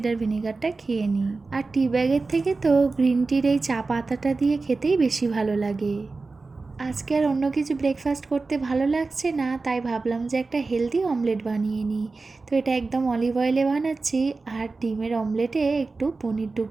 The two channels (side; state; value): left; quieter; 3.8 dB